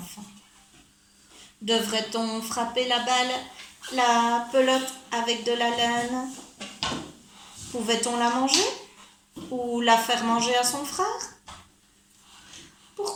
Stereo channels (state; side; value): identical; both; correlation 1.00